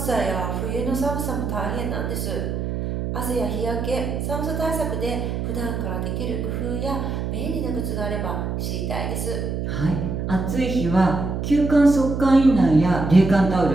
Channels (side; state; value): right; noise; hum, 3 dB below the sound